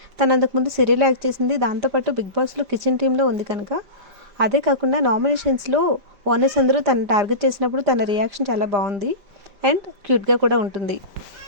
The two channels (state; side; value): late; left; 5.0 ms